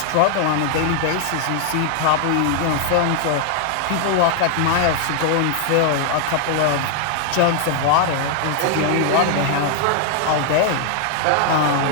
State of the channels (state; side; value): different; both; correlation 0.00